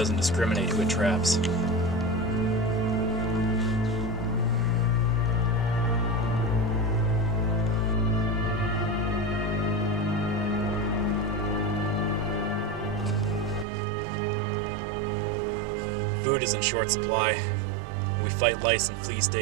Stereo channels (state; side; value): drops out; left; at 13.7 s